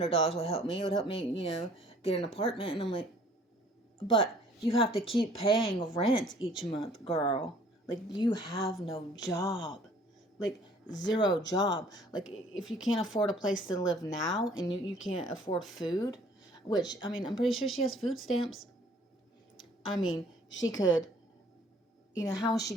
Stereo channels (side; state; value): both; normal; correlation 0.56